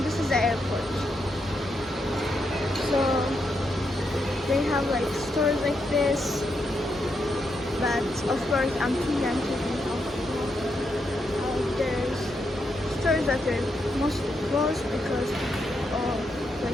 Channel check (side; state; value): both; normal; correlation 0.81